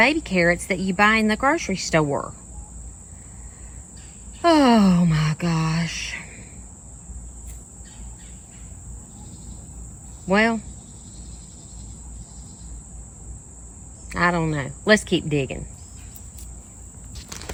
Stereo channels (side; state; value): both; identical; correlation 1.00